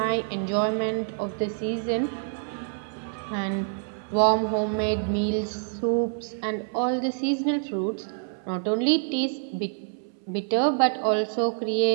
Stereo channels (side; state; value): left; silent; 60 dB below the other